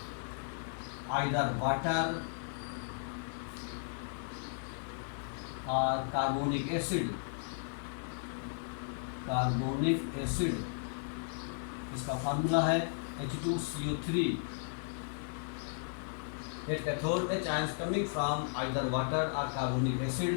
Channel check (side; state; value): right; silent; 54 dB below the other